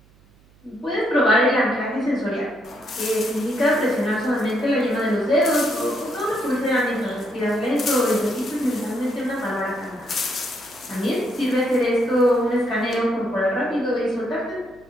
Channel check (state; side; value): noise; right; hum, 29 dB below the sound